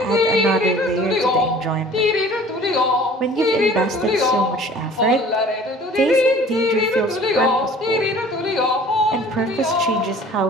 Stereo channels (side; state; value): both; normal; correlation 0.48